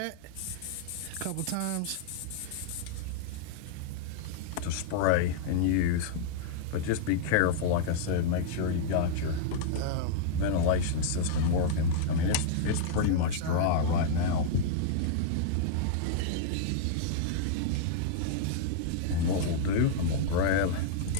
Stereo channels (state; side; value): different; both; correlation -0.01